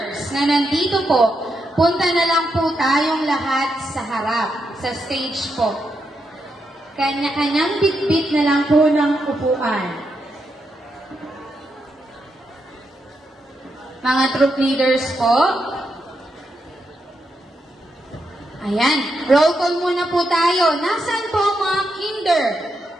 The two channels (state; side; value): normal; both; correlation 0.83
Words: na nandito po, punta na lang po tayong lahat sa harap, sa stage po. Kanya-kanyang bitbit na lang po ng upuan. Mga troop leaders po. Ayan, roll call muna po tayo. Nasaan po ang mga kinder?